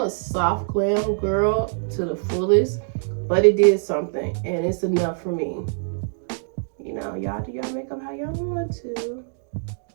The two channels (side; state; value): left; silent; digital silence